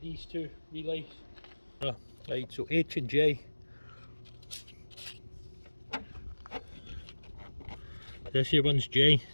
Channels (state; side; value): inverted; both; correlation -1.00